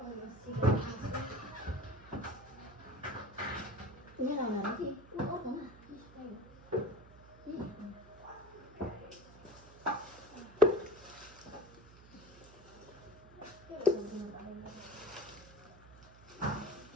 मेरो आउनु कि अर्को न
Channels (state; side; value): noise; right; hum, 20 dB below the sound